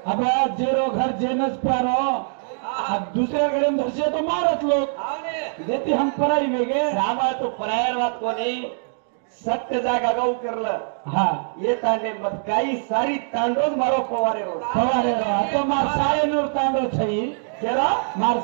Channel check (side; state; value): left; silent; digital silence